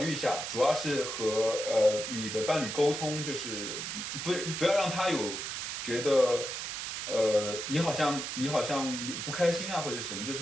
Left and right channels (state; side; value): noise; right; hiss, 5 dB below the sound